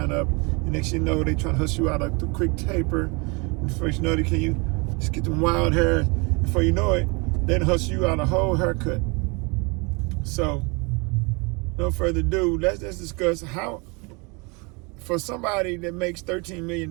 up, and next you know they trying to hustle you out of the quick taper. And first you know can you just get them wild hair. Before you know it, then hustle you out a whole haircut. So, no further ado, let's discuss how, for somebody that makes $13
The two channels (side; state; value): left; quieter; 29.7 dB